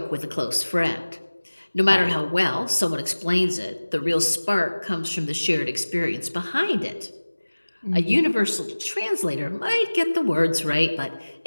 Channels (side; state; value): both; inverted; correlation -1.00